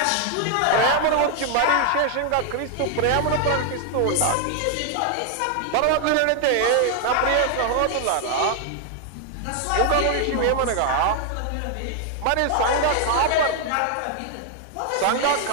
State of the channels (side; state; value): both; different; correlation 0.00